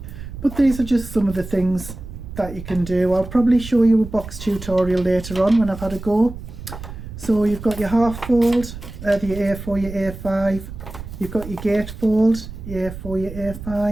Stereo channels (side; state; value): right; noise; rumble, 12 dB below the sound